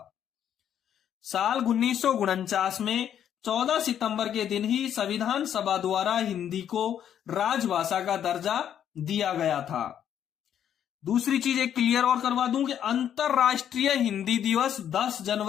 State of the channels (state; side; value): quieter; right; 9.6 dB